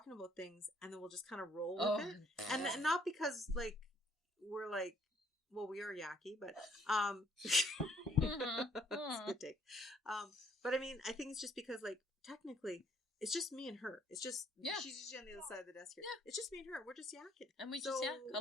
about things, and then we'll just kind of roll with it, and not because like we're like, well, we are yucky, but that's a good take. But I mean, I think it's just because like technically. It's just me and her. It's just she's usually on the other side of the desk here. Yeah. It's just me and her. We're just yakking, and we just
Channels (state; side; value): normal; both; correlation 0.64